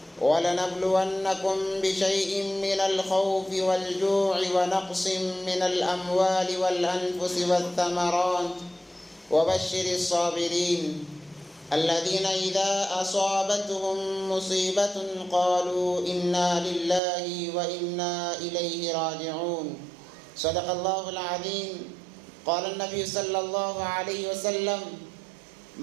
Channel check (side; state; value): left; drops out; at 17.0 s